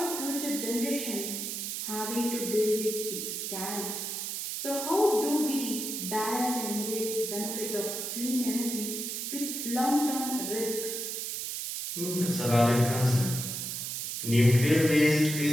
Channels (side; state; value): right; noise; hiss, 4 dB below the sound